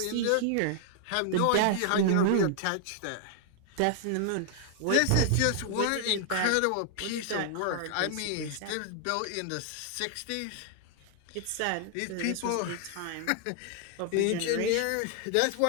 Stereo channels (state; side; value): different; both; correlation 0.00